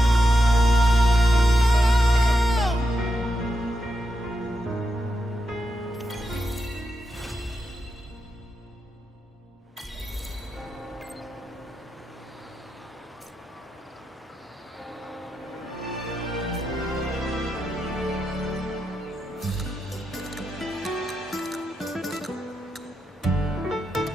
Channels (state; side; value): normal; both; correlation 0.86